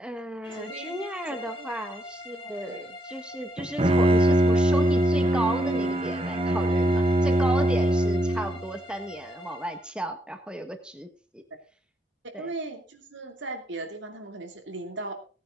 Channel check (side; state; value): both; normal; correlation 0.76